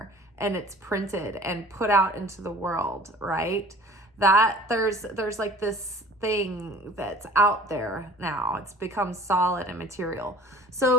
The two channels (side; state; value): both; normal; correlation 0.47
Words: and it's printed and put out into the world, right? That there's like this thing that's out there now. It's become solid and material.